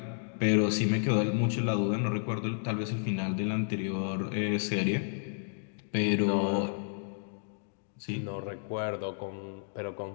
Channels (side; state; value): right; silent; digital silence